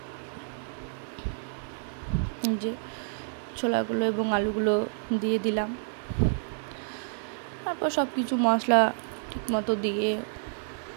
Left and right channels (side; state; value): left; silent; digital silence